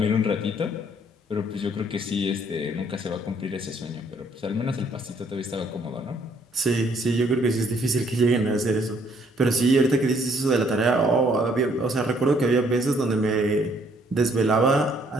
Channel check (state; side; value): normal; both; correlation 0.65